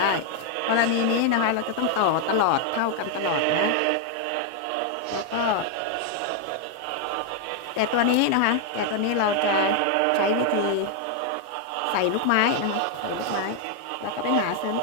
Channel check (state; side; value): different; both; correlation 0.00